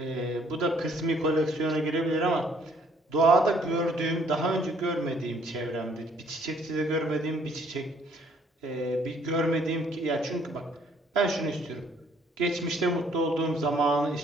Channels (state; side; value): normal; both; correlation 0.63